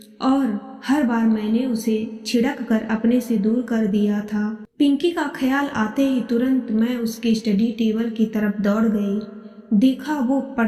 और हर बार मैंने उसे छिड़क कर अपने से दूर कर दिया था। पिंकी का ख्याल आते ही तुरंत मैं उसके स्टडी टेबल की तरफ दौड़ गई। देखा वो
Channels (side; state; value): both; identical; correlation 1.00